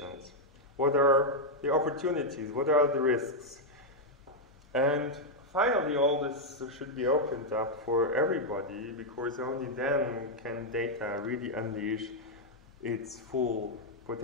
What are the opportunities? What are the risks? And finally, all this should be opened up for everybody, because only then can data really unleash its full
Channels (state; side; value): normal; both; correlation -0.02